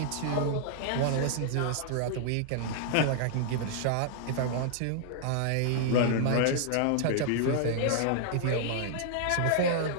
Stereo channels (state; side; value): different; both; correlation -0.01